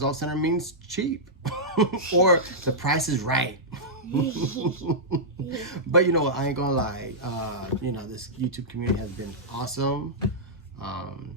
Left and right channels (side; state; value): both; normal; correlation -0.12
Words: off-center means cheap or the price is right. But you know what, I ain't gonna lie, you know, this YouTube community has been awesome.